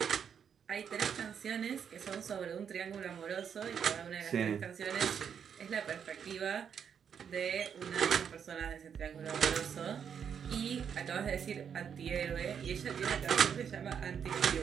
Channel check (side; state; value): left; quieter; 7.6 dB